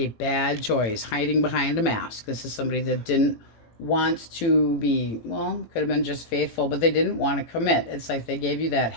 bad choice, hiding behind a mask. This is somebody that didn't want to be, well, could have been just faithful, but they didn't want to commit. It's like they gave you that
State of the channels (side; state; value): right; late; 18 ms